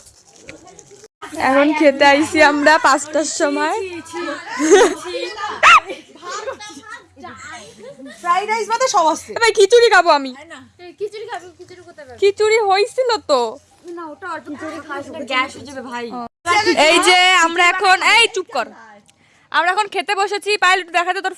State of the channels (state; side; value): identical; both; correlation 1.00